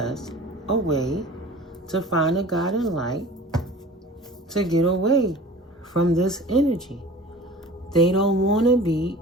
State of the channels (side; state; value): both; normal; correlation 0.42